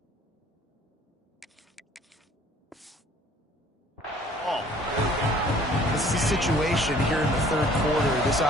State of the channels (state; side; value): normal; both; correlation 0.55